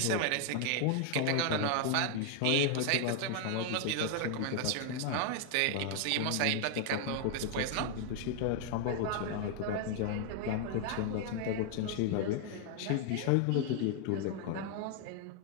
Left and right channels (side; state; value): both; different; correlation 0.00